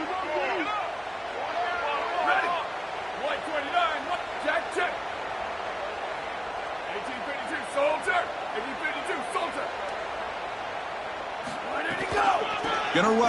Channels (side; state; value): both; identical; correlation 1.00